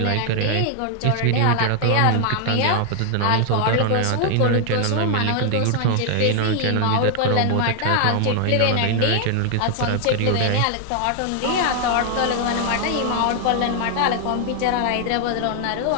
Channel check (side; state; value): both; different; correlation 0.00